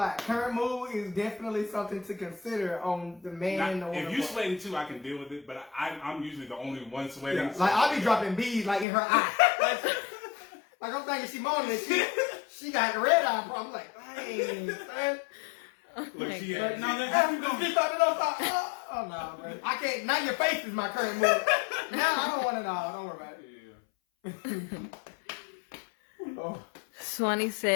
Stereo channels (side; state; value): right; drops out; at 8.8 s